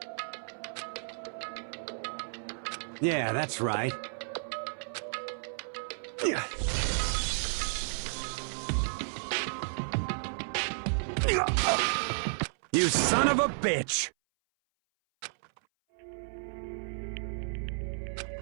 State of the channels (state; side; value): silent; left; 56 dB below the other